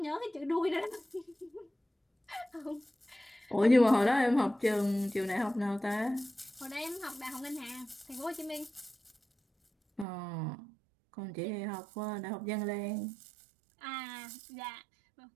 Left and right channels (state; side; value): drops out; left; at 10.1 s